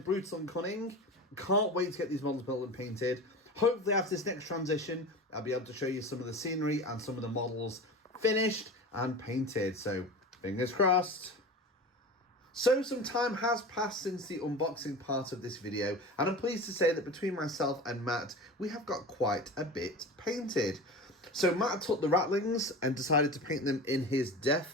Brutal and Cunning. Can't wait to get these models built and painted. Hopefully after this next transition, I'll be able to show you some of the scenery and some of the models finished and painted. So fingers crossed. So some time has passed since the unboxing part of this video, and I'm pleased to say that between myself and Matt, we have got quite a bit painted. So Matt took the Ratlings and decided to paint them in his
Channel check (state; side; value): normal; both; correlation 0.31